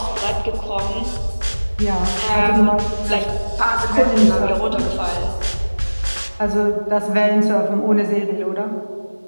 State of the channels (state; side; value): inverted; both; correlation -1.00